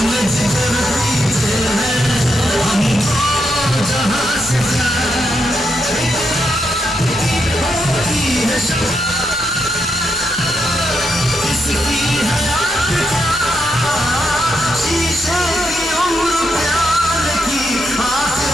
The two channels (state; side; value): normal; both; correlation 0.81